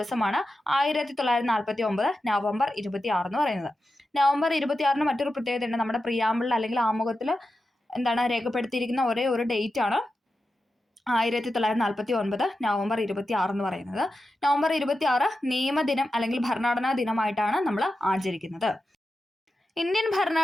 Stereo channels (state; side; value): normal; both; correlation 0.91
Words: 1949 നവംബർ 26 എന്ന് പറയുന്നത്. നവംബർ 26 മറ്റൊരു പ്രത്യേകതയുണ്ട്. നമ്മുടെ പ്രിയാമ്പിളിൽ അല്ലെങ്കിൽ ആമുഖത്തിൽ രേഖപ്പെടുത്തിയിരിക്കുന്ന ഒരേ ഒരു ഡേറ്റ് ആണ് 1949 നവംബർ 26 എന്ന് പറയുന്നത്. നവംബർ 26 നിയമദിനം അല്ലെങ്കിൽ ഭരണഘടനാ ദിനമായിട്ടാണ് നമ്മൾ ആചരിക്കുന്നത്. ഇന്ത്യൻ